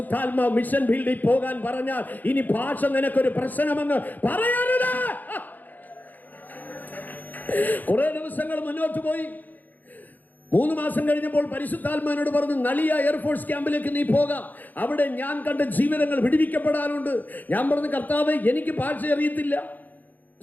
മിഷൻ ഫീൽഡിൽ പോകാൻ പറഞ്ഞാൽ ഇനി ഭാഷ നിനക്കൊരു പ്രശ്നമെന്ന് പറയരുത്. കുറെ ദിവസങ്ങൾ മുന്നോട്ട് പോയി. 3 മാസം കഴിഞ്ഞപ്പോൾ പരിശുദ്ധാത്മാവിനോട് പറഞ്ഞു, നളിയ എയർഫോഴ്സ് ക്യാമ്പിലേക്ക് നീ പോകാം, അവിടെ ഞാൻ കണ്ട ജീവിതങ്ങൾ വിടുവിക്കപ്പെടാനുണ്ട്. ഞാൻ പറഞ്ഞു, കർത്താവേ എനിക്ക് ഭാഷ അറിയത്തില്ല.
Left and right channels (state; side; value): late; right; 0.084 ms